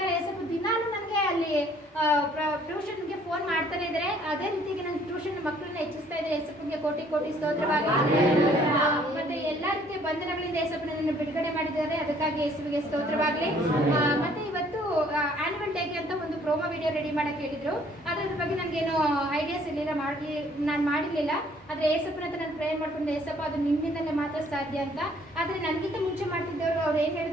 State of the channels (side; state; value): both; normal; correlation 0.60